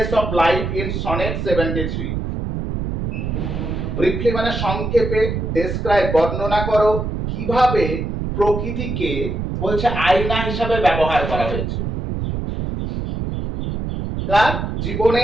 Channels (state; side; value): noise; right; rumble, 3 dB below the sound